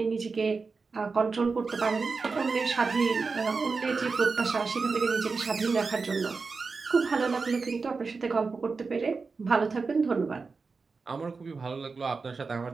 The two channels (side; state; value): left; quieter; 4.5 dB